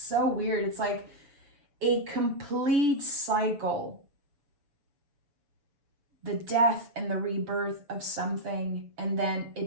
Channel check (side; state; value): left; late; 6.9 ms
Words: weird. It's like a complete cycle. The death and the rebirth of something, and then